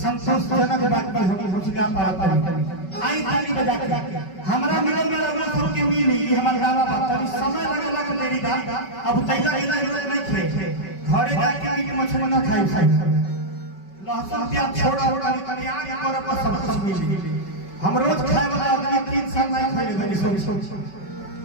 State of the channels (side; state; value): right; late; 5.3 ms